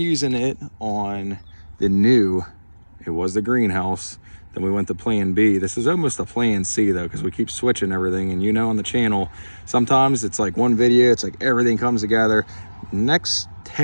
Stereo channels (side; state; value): both; inverted; correlation -1.00